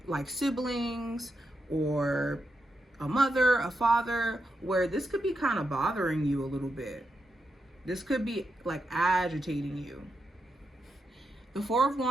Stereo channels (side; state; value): both; normal; correlation 0.85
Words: siblings, or a mother, a father, where this could be kind of bothering you a little bit. This could be agitating you. The Four of